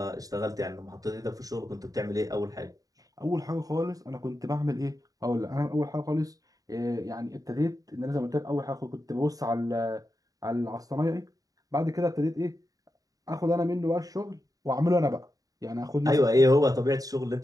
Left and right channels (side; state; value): left; late; 0.18 ms